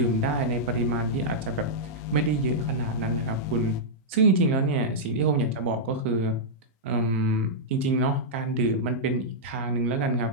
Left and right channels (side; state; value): both; normal; correlation -0.09